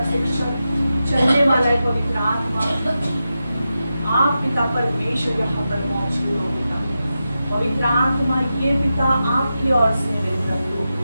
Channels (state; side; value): inverted; both; correlation -0.91